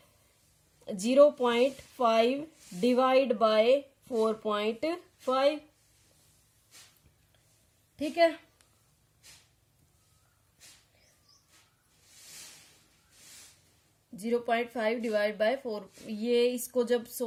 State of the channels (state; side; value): identical; both; correlation 1.00